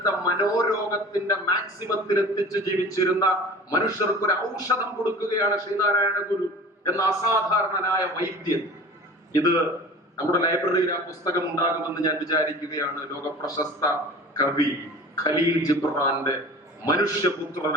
മനോരോഗത്തിന്റെ മാക്സിമത്തിൽ എത്തിച്ച് ജീവിച്ചിരുന്ന മനുഷ്യർക്ക് ഒരു ഔഷധം കൊടുക്കുകയാണ് ശ്രീനാരായണ ഗുരു എന്ന അസാധാരണനായ വൈദ്യൻ. ഇത് നമ്മുടെ ലൈബ്രറിയിൽ ആ പുസ്തകം ഉണ്ടാകുമെന്ന് ഞാൻ വിചാരിക്കുകയാണ്. ലോകപ്രശസ്ത കവി ഖലീൽ ജിബ്രാന്റെ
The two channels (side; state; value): both; normal; correlation 0.40